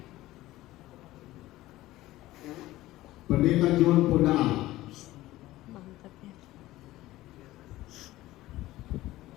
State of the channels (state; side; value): quieter; right; 16.7 dB